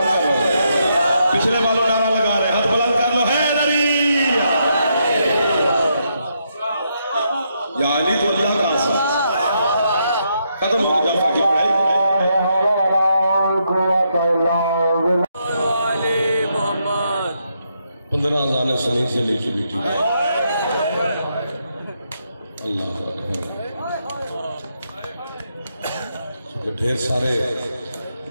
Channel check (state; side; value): inverted; both; correlation -0.79